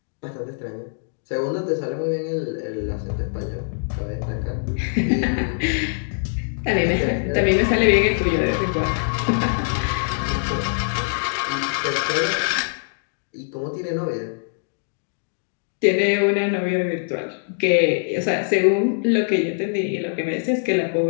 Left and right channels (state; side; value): silent; right; digital silence